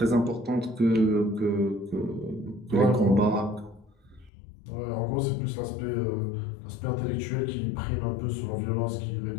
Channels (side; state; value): right; drops out; at 4.3 s